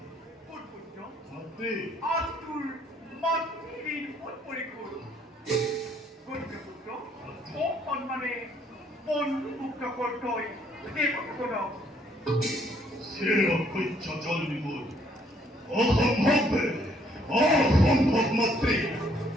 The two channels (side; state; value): both; normal; correlation 0.66